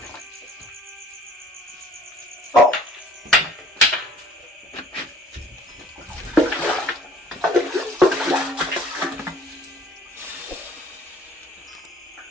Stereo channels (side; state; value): both; normal; correlation 0.53